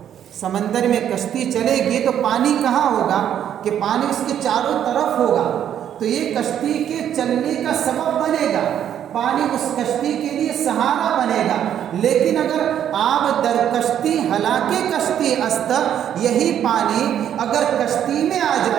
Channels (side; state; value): left; quieter; 9.9 dB